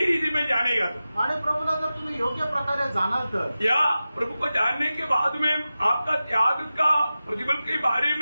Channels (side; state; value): both; inverted; correlation -0.95